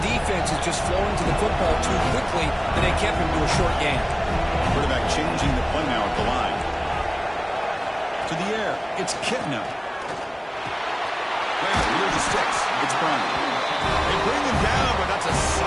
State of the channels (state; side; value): identical; both; correlation 1.00